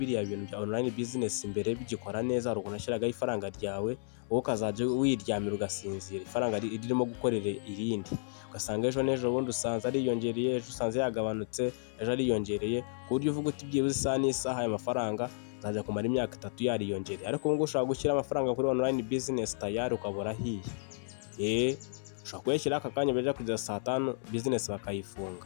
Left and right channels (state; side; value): silent; right; 56 dB below the other